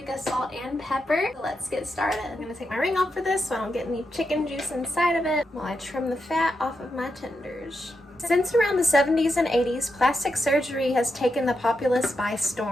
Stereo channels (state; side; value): normal; both; correlation 0.85